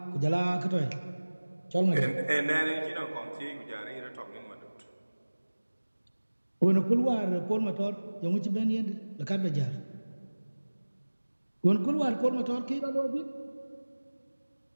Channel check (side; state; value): both; inverted; correlation -1.00